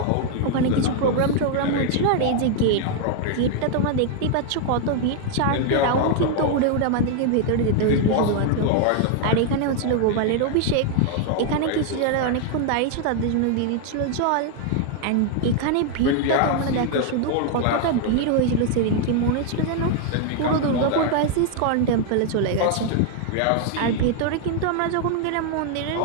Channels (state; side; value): different; both; correlation 0.00